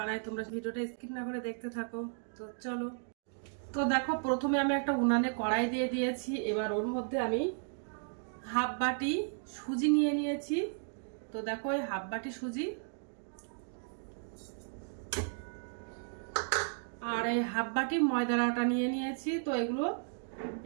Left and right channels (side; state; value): left; silent; digital silence